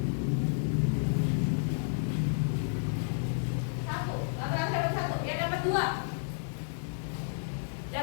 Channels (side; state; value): right; silent; digital silence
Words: Satu. Lalu dapat satu. Yang dapat dua?